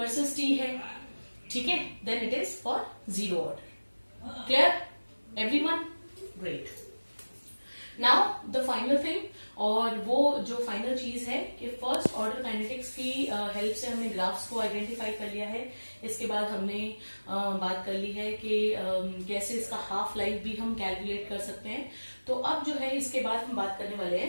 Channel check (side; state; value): both; inverted; correlation -1.00